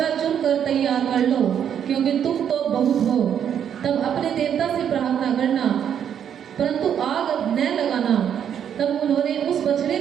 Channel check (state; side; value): quieter; left; 8.8 dB